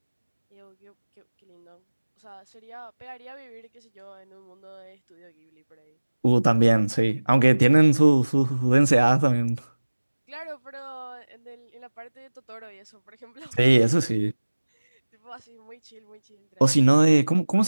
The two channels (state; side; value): inverted; both; correlation -1.00